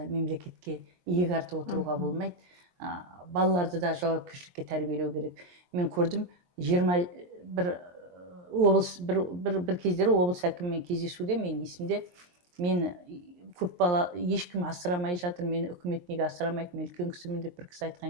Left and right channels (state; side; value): late; left; 23 ms